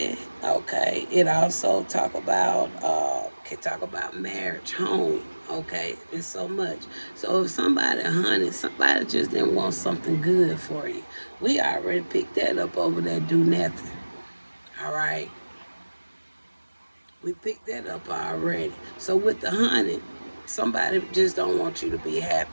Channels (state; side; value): inverted; both; correlation -1.00